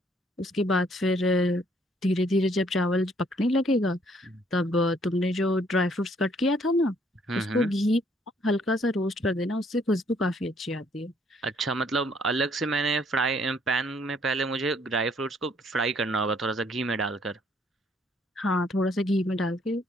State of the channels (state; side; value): normal; both; correlation 0.65